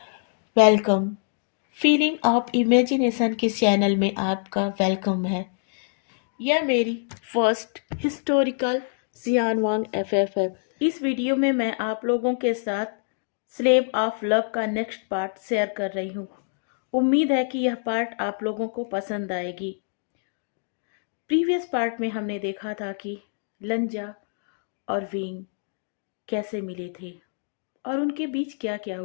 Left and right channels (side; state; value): right; silent; digital silence